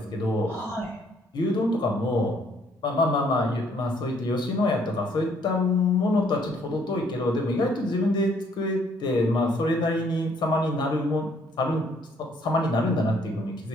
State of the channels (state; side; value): normal; both; correlation 0.65